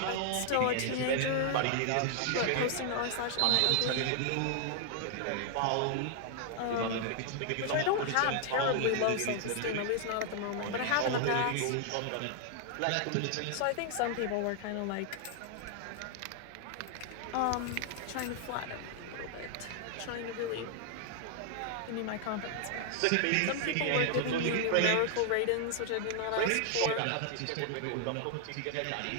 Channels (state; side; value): different; both; correlation 0.00